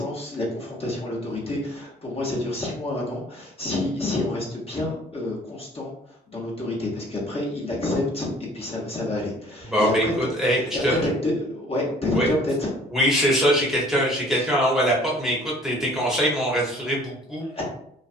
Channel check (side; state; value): both; normal; correlation 0.53